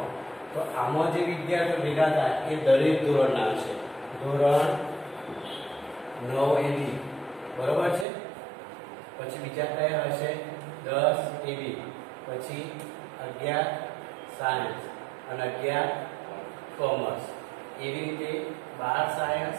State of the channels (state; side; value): drops out; left; at 8.1 s